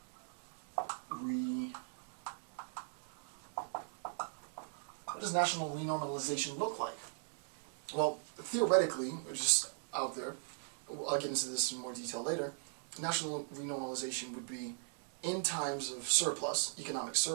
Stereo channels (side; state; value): left; silent; 52 dB below the other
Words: what does national renormalization look like? Well, theoretically, it's just out there, I'll get into this in more detail later, national renormalization would be in times of surplus, economic